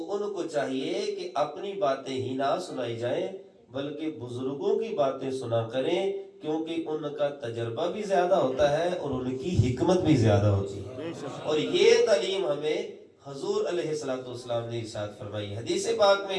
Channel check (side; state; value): both; identical; correlation 1.00